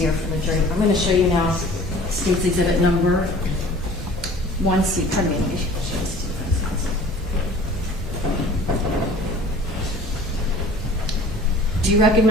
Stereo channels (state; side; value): normal; both; correlation 0.46